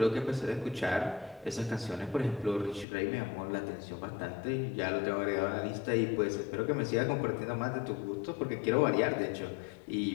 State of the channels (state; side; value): drops out; right; at 2.9 s